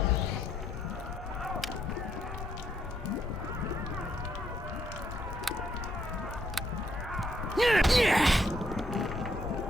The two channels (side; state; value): both; normal; correlation 0.73